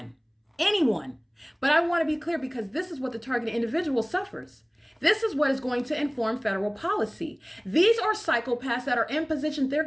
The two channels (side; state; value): both; identical; correlation 1.00